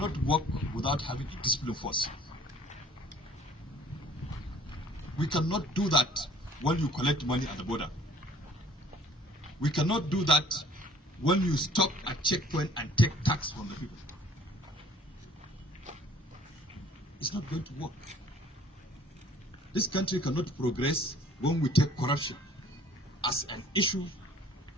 work without having a discipline force. We cannot do that when you collect money at the border. We cannot do that when you stop at checkpoint and take tax from the people. It's not going to work. This country cannot progress when we take corruption as an issue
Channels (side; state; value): both; normal; correlation 0.53